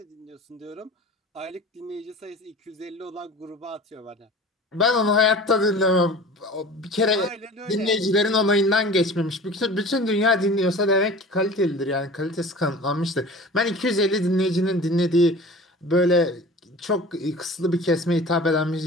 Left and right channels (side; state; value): both; normal; correlation 0.40